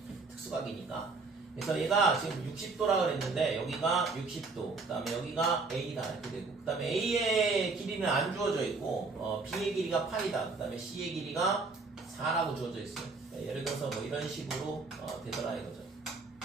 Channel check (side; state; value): left; quieter; 4.0 dB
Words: 특수각이니까. 그래서 얘가 지금 60도라 그랬는데 여기가 60도, 그 다음에 여기가 A다 이렇게 되고, 그 다음에 A의 길이는 안 주어져 있고 B의 길이가 8이다, 그 다음에 C의 길이가 4라고 주어져 있어요. 예를 들어서 뭐 이런 식으로 되더라 이거죠.